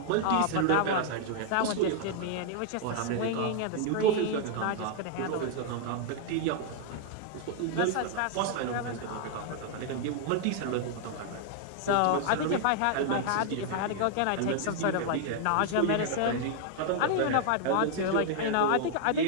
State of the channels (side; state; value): both; different; correlation -0.01